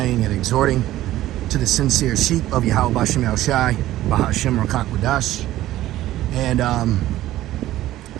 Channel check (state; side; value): quieter; left; 14.7 dB